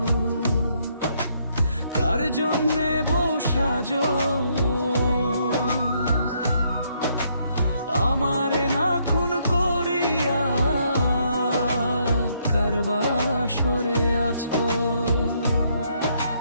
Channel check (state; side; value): inverted; both; correlation -0.72